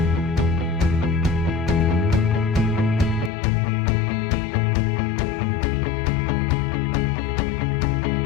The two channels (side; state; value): right; drops out; at 3.3 s